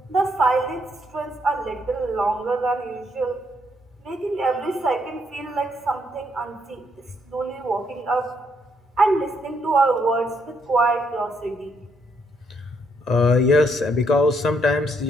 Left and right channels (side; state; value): both; normal; correlation 0.74